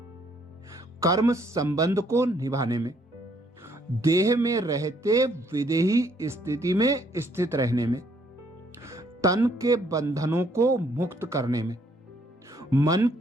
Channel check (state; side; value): normal; both; correlation 0.67